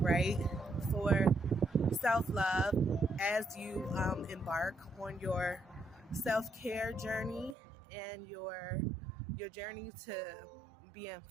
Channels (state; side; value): drops out; left; at 7.6 s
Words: for self-love as you embark on your self-care journey and your journey to being